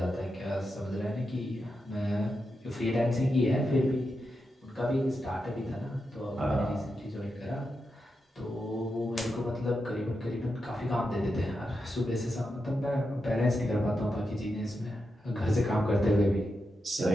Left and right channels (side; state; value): both; normal; correlation 0.87